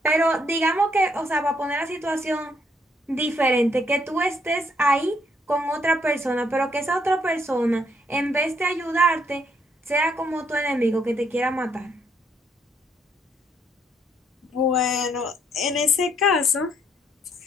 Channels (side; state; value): both; normal; correlation 0.71